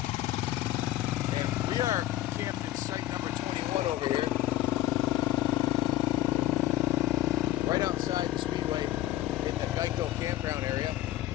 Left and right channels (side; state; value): right; quieter; 14.4 dB